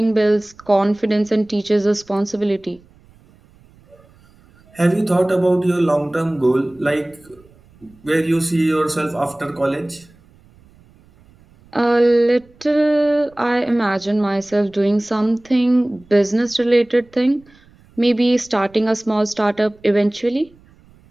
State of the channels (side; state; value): right; noise; rumble, 29 dB below the sound